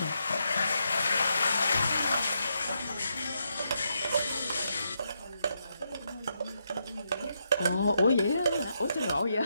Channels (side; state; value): both; inverted; correlation -0.81